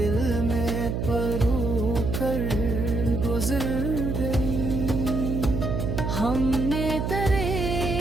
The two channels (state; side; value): noise; right; hum, 1 dB below the sound